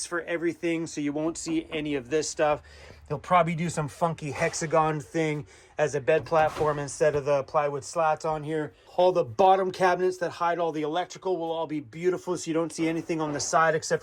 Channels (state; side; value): identical; both; correlation 1.00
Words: for everything, so you won't see any of this stuff. He'll probably do some funky hexagon thing as a bed platform instead of the plywood slats on here. All the bottom cabinets that hide all the electrical will all be beautiful, so you don't see anything on the side except